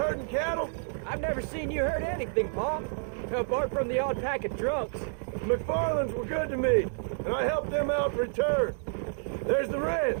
cattle? I've never seen you hurt anything, Pa. Apart from the odd pack of drunks. The McFarlands were good to me, and I helped them out in return. There's the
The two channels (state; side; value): silent; left; digital silence